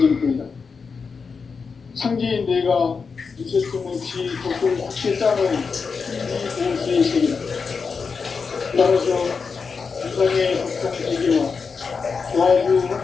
전부이다. 상제인 내가 무쇠통 없이 덕을 굳게 짜놓은 천지 도시의 세계다. 따라서 유상의 덕통 세계와 조화주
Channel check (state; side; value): quieter; right; 5.2 dB